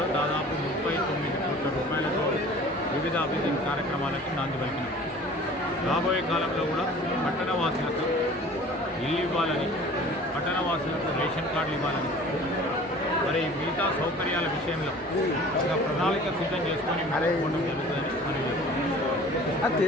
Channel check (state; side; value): normal; both; correlation 0.46